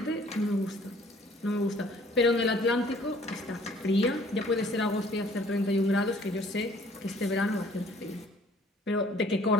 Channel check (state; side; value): normal; both; correlation 0.57